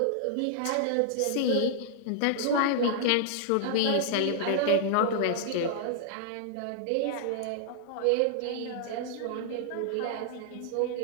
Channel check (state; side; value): different; both; correlation -0.01